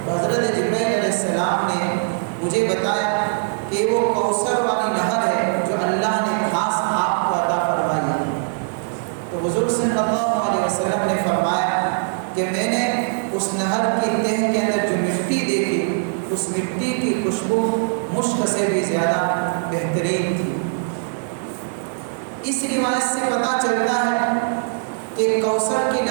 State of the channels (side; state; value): left; silent; digital silence